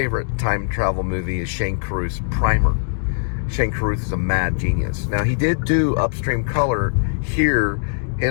time travel movie is Shane Carruth's Primer. Shane Carruth is a mad genius. Now, he did do Upstream Color here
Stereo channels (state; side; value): silent; right; digital silence